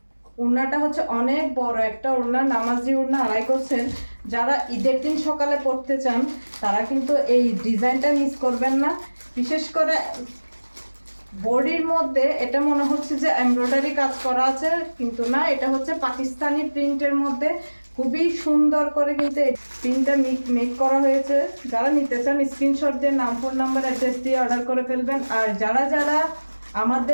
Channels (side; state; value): both; inverted; correlation -1.00